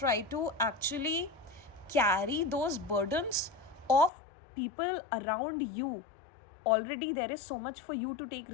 to actually carry those burdens of people around you. Already there is so much for you to take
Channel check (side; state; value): right; drops out; at 4.1 s